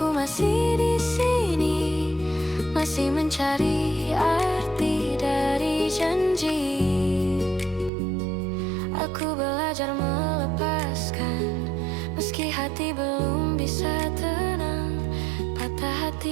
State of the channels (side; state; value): left; drops out; at 7.9 s